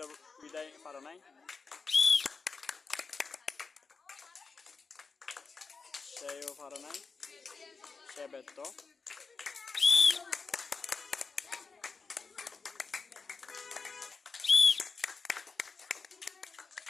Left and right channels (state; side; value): quieter; right; 4.7 dB